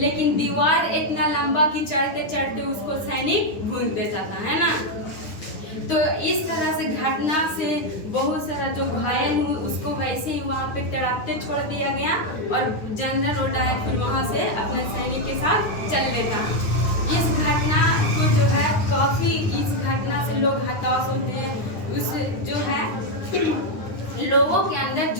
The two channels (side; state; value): right; late; 9.8 ms